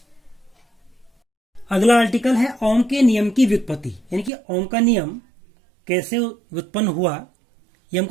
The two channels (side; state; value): left; drops out; at 4.3 s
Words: अगला आर्टिकल है ओम के नियम की व्युत्पत्ति, यानी कि ओम का नियम कैसे उत्पन्न हुआ ये